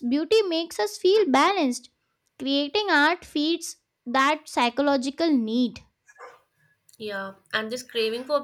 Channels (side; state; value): both; identical; correlation 1.00